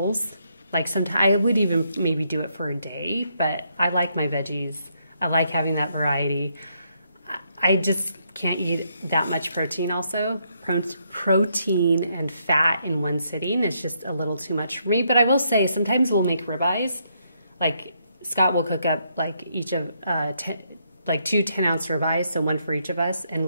Like sometimes I would even maybe do it for a day, but I like my veggies. I like having that variety. I just can't eat that much protein also. Protein and fat in one sitting is just a little too much for me. But I will say sometimes we'll make ribeyes. Like Scott will cook up like each of two 10-ounce ribeyes, so one for each of us, and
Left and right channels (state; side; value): inverted; both; correlation -0.75